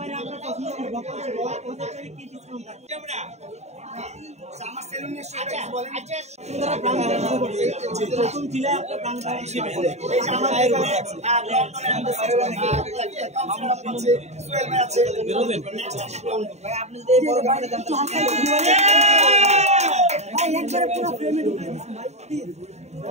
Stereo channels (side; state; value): left; late; 0.32 ms